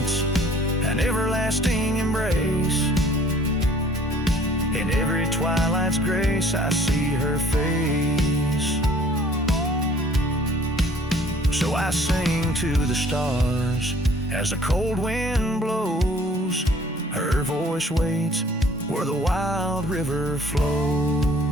an everlasting embrace. In every twilight's grace I see her face. So I sing to the stars as the cold wind blows. Her voice waits where the wild river flows.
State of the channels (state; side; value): normal; both; correlation 0.55